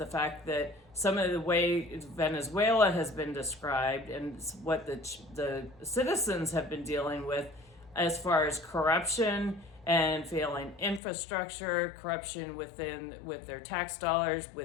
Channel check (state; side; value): drops out; right; at 11.0 s